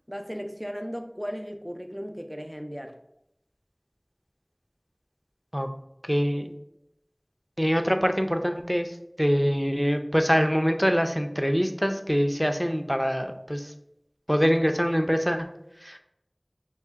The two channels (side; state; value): both; identical; correlation 1.00